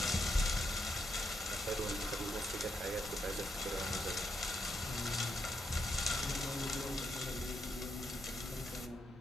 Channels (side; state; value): both; normal; correlation 0.80